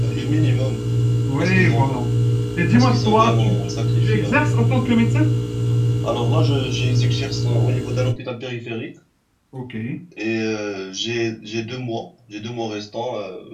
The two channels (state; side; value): identical; both; correlation 1.00